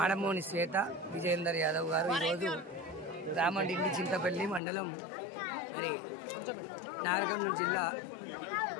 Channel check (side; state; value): right; drops out; at 4.6 s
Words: శ్వేత విజయేందర్ యాదవ్ గారు ఈరోజు రామండిండి చింతపల్లి మండలం మరి నాగర్ కర్నూలు జిల్లా